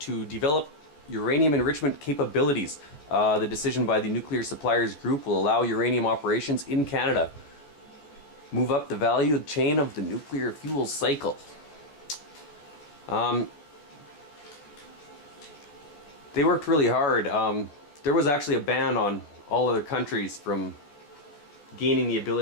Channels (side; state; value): right; late; 14 ms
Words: develop uranium enrichment capabilities. The decision by the Nuclear Suppliers Group will allow uranium operations in Canada move up the value chain of the nuclear fuel cycle. They worked really hard. There was actually a ban on all other countries from gaining the